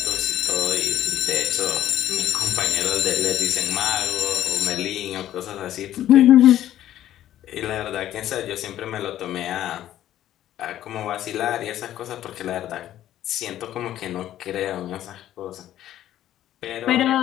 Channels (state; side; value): quieter; right; 12.5 dB